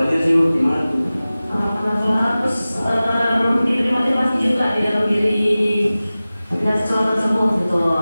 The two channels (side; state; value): both; inverted; correlation -0.97